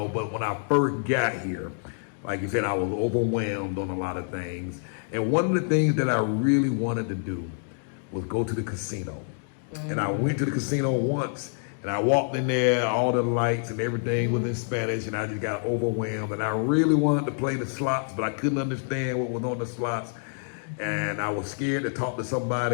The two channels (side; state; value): right; silent; digital silence